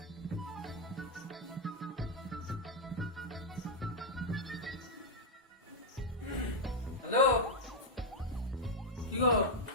হ্যালো, কি গো?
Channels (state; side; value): normal; both; correlation -0.01